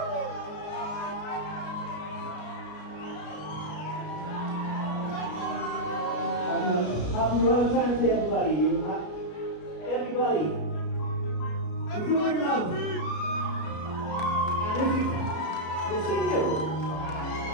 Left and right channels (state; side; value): late; right; 33 ms